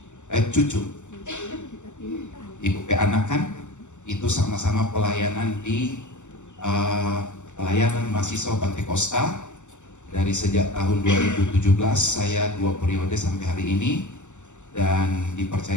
cucu. Ibu anak kan, itu sama-sama pelayanan di pelayanan mahasiswa Pantai Costa. Dari sejak tahun 2017 saya 2 periode sampai hari ini, dan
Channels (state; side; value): late; right; 0.84 ms